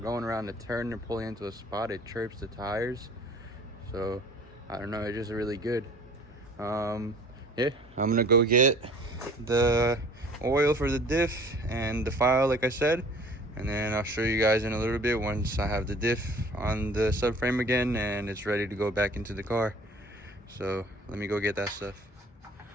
going around the turn and pulling into a spot, it chirps the tires. So I don't know, it's just really good. Yeah, I'm gonna go get the oil for the diff and the file, like I said, and then I'll show you guys in a little bit once I have the diff on the subframe again and it's ready to go back into the car. So let me go get that stuff.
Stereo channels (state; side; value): normal; both; correlation 0.49